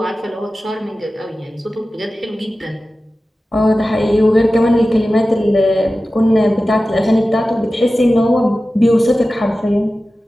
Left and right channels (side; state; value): both; normal; correlation 0.95